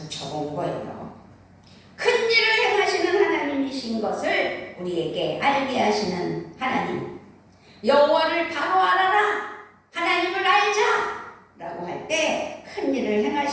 거예요. 큰 일을 행하시는 하나님이신 것을 우리에게 알게 하시는 하나님. 여호와를 바로 알아라, 하나님을 알자 라고 할 때 큰 일을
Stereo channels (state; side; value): identical; both; correlation 1.00